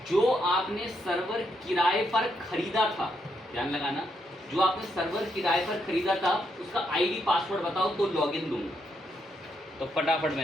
जो आपने सर्वर किराए पर खरीदा था, ध्यान लगाना, जो आपने सर्वर किराए पर खरीदा था उसका आईडी पासवर्ड बताओ तो लॉगिन दूंगा। तो फटाफट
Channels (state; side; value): normal; both; correlation 0.78